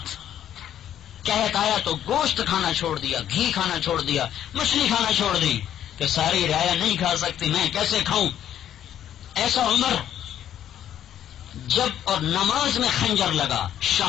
کہت آیا تو گوشت کھانا چھوڑ دیا، گھی کھانا چھوڑ دیا، مچھلی کھانا چھوڑ دی کہ ساری رعایا نہیں کھا سکتی میں کیسے کھاؤں. ایسا عمر جب اور نماز میں خنجر لگا،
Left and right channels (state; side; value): quieter; right; 10.7 dB